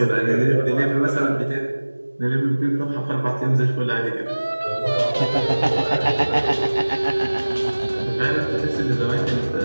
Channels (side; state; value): both; inverted; correlation -1.00